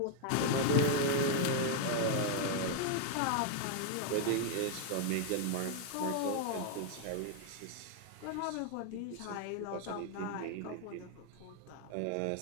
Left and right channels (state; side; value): different; both; correlation 0.00